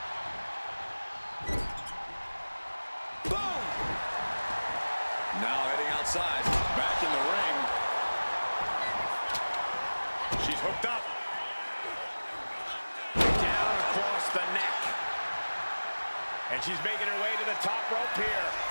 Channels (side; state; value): both; inverted; correlation -1.00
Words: Boom! Now heading outside. Back in the ring. She's hooked up. Down across the neck. And she's making her way to the top rope here.